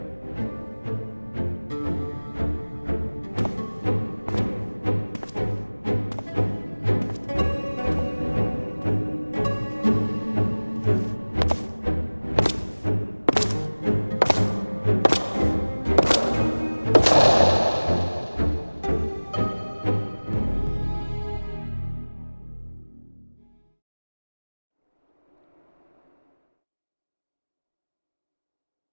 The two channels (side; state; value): both; inverted; correlation -1.00